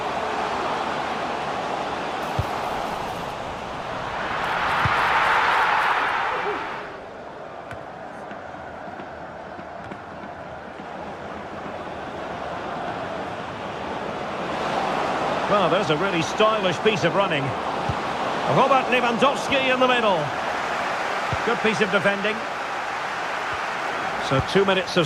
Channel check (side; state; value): both; identical; correlation 1.00